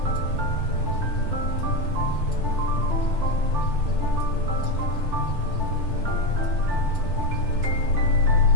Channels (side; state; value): left; late; 6.2 ms